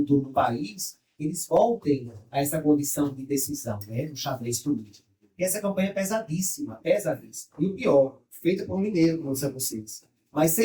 do país, eles voltem a essa condição de decisão, né, no xadrez político. E essa campanha é pesadíssima, pesadíssima. E o pior, feita por um mineiro, como disseram vocês. Mas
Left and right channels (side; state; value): both; identical; correlation 1.00